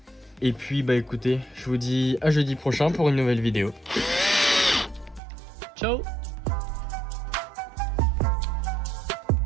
Et puis bah écoutez, je vous dis à jeudi prochain pour une nouvelle vidéo. Ciao!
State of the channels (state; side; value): drops out; left; at 5.2 s